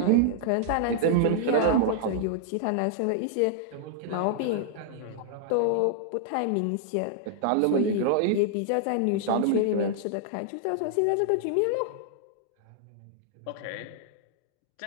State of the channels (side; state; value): both; different; correlation -0.01